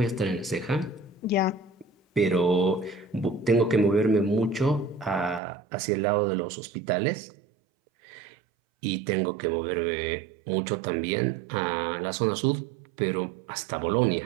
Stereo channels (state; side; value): drops out; left; at 5.4 s